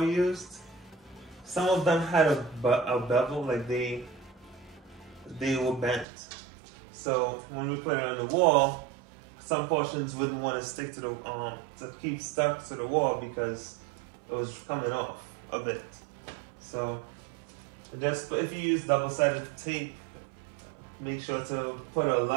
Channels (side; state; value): left; drops out; at 6.1 s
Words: we used. Some of them had a bevel, like they were bent. So when we put it on the wall, some portions wouldn't want to stick to the to keep stuck to the wall because it was coming off a bit. So just if you use double-sided tape, make sure to put a